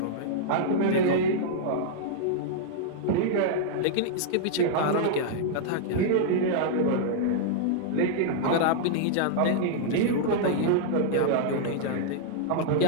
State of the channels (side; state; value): both; different; correlation -0.01